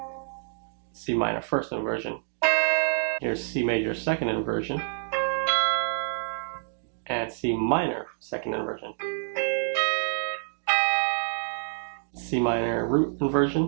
C minor first inversion, here's C major second inversion, and C minor second inversion. C minor root inversion,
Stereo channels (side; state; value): left; silent; digital silence